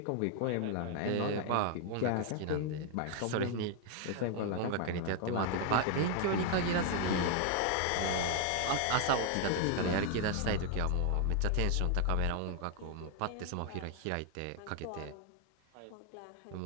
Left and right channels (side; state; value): both; different; correlation 0.00